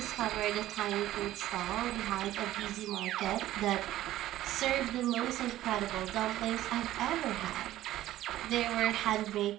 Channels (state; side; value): quieter; left; 14.4 dB